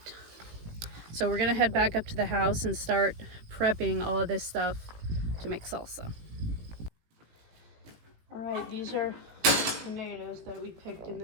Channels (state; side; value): late; left; 18 ms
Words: So we're gonna head back up to the house and start prepping all of this stuff to make salsa. All right, these are tomatoes that we picked in